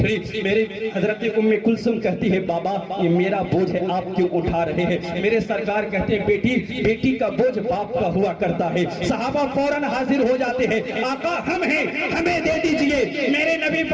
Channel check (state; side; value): identical; both; correlation 1.00